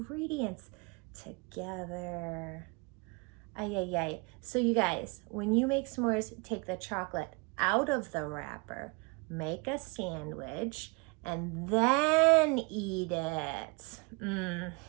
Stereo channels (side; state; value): left; quieter; 30.4 dB